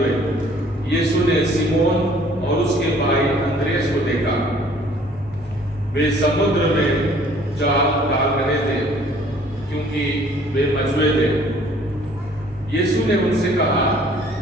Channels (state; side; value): normal; both; correlation 0.56